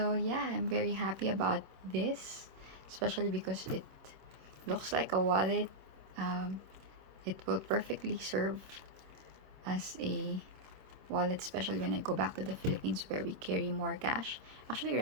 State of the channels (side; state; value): left; late; 26 ms